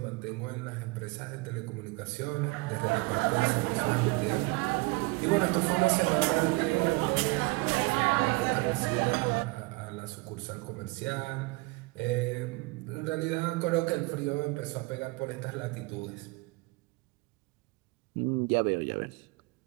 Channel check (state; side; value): quieter; left; 25.1 dB